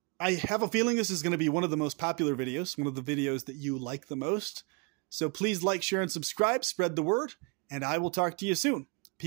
I have a feeling this is going to be one of the most popular videos, one of the videos that you like the most. So please like, share, and subscribe, spread the word, and I will talk to you soon.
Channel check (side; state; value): left; quieter; 31.7 dB